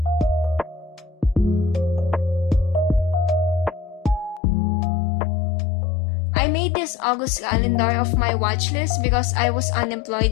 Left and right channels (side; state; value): right; drops out; at 4.4 s